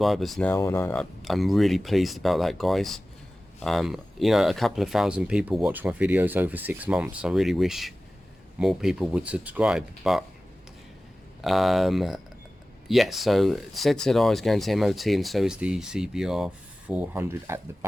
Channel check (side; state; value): both; normal; correlation 0.97